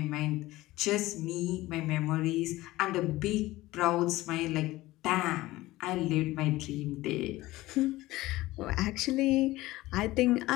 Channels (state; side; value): quieter; right; 18.0 dB